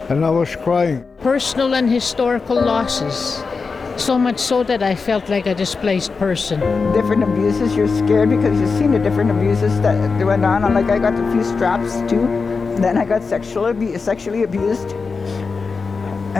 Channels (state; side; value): quieter; right; 4.7 dB